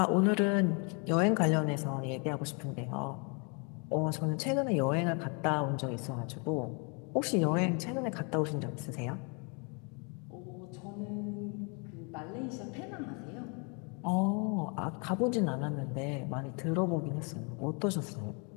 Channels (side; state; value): right; quieter; 34.9 dB